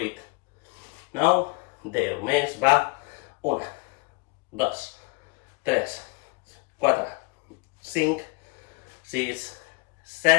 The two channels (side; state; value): right; quieter; 28.0 dB